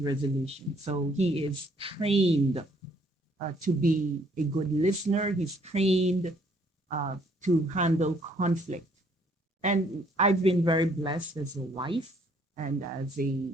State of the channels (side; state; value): both; normal; correlation 0.64